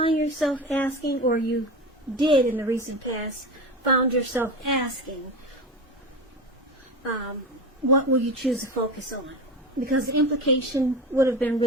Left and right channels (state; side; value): normal; both; correlation 0.25